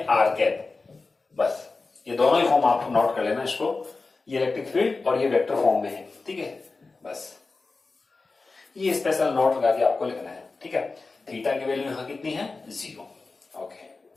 कैप, बस ये दोनों ही फॉर्म आप नोट कर लेना इसको। ये इलेक्ट्रिक फील्ड और ये वेक्टर फॉर्म में है, ठीक है, बस ये स्पेशल नोट लगा के आपको लिखना है, ठीक है। थीटा की वैल्यू यहां कितनी है, 0, ओके,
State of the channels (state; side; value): quieter; right; 3.8 dB